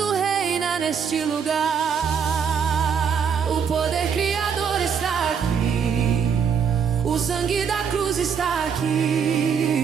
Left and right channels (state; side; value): quieter; left; 6.8 dB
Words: reina neste lugar. O poder criador está aqui, o sangue da cruz está